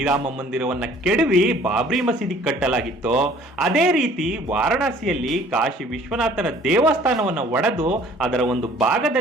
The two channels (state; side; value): normal; both; correlation 0.54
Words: ಮಂದಿರವನ್ನ ಕೆಡವಿ ಬಾಬ್ರಿ ಮಸೀದಿ ಕಟ್ಟಲಾಗಿತ್ತೋ, ಅದೇ ರೀತಿ ವಾರಣಾಸಿಯಲ್ಲಿ ಕಾಶಿ ವಿಶ್ವನಾಥನ ದೇವಸ್ಥಾನವನ್ನ ಒಡೆದು ಅದರ ಒಂದು